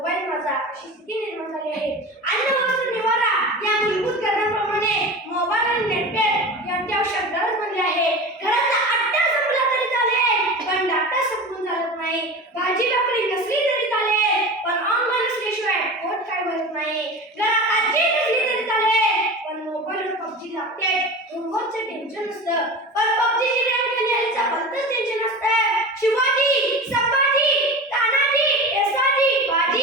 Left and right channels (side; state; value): both; normal; correlation 0.32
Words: माझा, अशी स्थिती निर्माण झाली आहे. अन्न वस्त्र निवारा या मूलभूत गरजांप्रमाणे मोबाईल आणि नेटपॅक यांची आवश्यक गरज बनली आहे. घरातला आट्टा संपला तरी चालेल पण डाटा संपून चालत नाही. भाजी भाकरी नसली तरी चालेल पण ऑनलाईन असल्याशिवाय पोट काय भरत नाही. घरात आजी नसली तरी चालेल पण मोबाईलवर पबजी लागते. होमवर्कचं टेन्शन नसतं पण पबजीची रँक खेळण्याचा भलतंच टेन्शन असतं. शिवाजी, संभाजी, तानाजी, येसाजी,